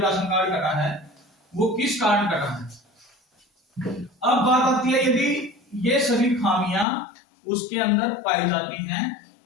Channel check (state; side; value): drops out; right; at 6.9 s